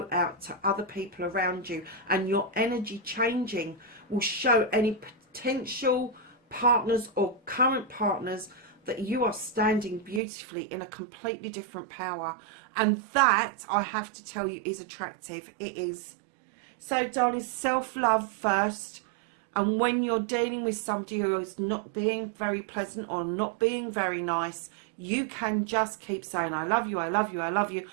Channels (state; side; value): drops out; left; at 10.2 s